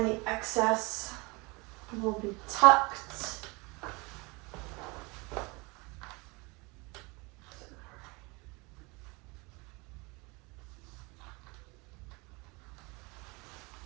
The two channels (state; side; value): quieter; left; 26.8 dB